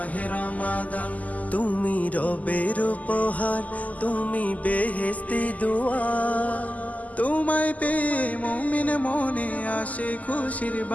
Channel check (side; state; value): right; late; 0.076 ms